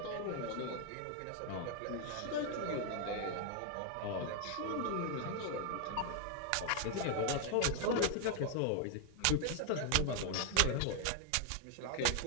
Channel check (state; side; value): different; both; correlation 0.00